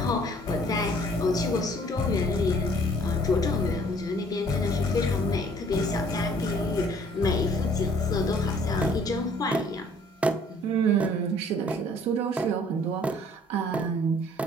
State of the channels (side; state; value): both; normal; correlation 0.57